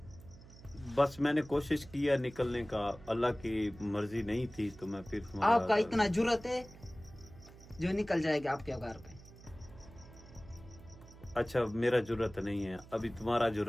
बस मैंने कोशिश किया निकलने का, अल्लाह की मर्जी नहीं थी तो मैं फिर आपका इतना जुर्रत है जो निकल जाएगा आपके घर पे। अच्छा मेरा जुर्रत नहीं है, अभी तुम्हारा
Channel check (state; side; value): noise; right; hum, 19 dB below the sound